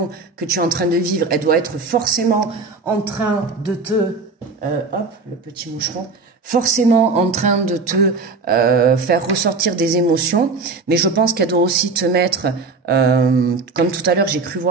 que tu es en train de vivre, elle doit être forcément en train de te... hop, le petit moucheron. Forcément en train de te faire ressortir des émotions. Mais je pense qu'elle doit aussi te mettre... comme tout à l'heure, j'ai cru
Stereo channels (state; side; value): quieter; left; 4.1 dB